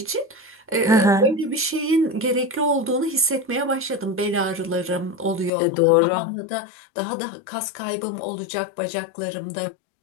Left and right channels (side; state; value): right; drops out; at 5.5 s